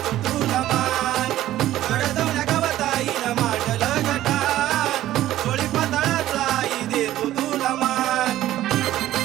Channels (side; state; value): left; quieter; 13.9 dB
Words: तुला मान। गडदवण्या गावात आईनं मांडलं गटान, कोळी पाताळाचा आई देतो तुला मान।